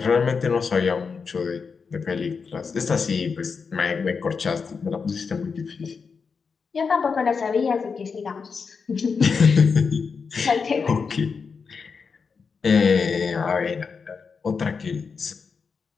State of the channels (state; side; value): quieter; right; 5.4 dB